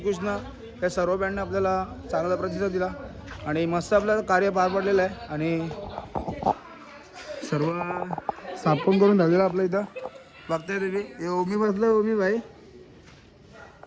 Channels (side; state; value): both; identical; correlation 1.00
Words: या सर्व बँडने आपल्याला चांगला प्रतिसाद दिला आणि मस्त आपलं कार्य पार पडलेलं आहे. आणि सर्व साफून करून झालेलं आपलं इथं बघताय तुम्ही. हे ओमी बसलं, ओमी भाई